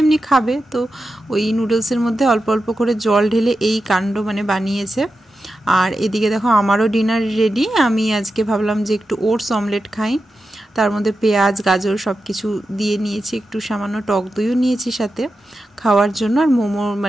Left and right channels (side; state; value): both; normal; correlation 0.90